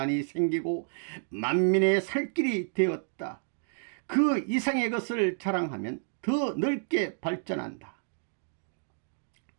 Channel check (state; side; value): silent; left; digital silence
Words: 생기고 만민의 살 길이 되었다. 그 이상의 것을 자랑하면 더 넓게 발전한다.